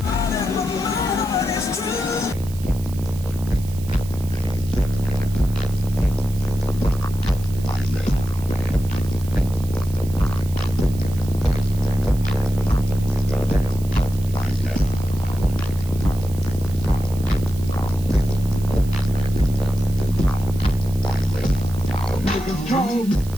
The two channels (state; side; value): noise; right; hiss, 18 dB below the sound